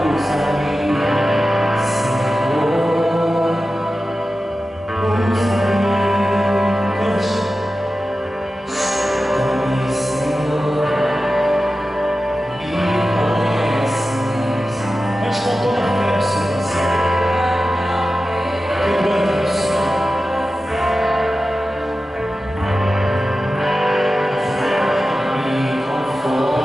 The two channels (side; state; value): both; normal; correlation 0.94